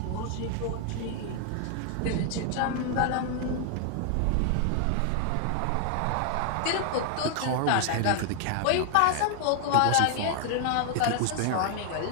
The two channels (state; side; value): different; both; correlation 0.00